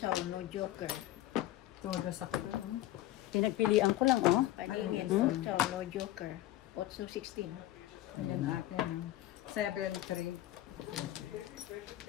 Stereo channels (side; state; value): right; quieter; 14.7 dB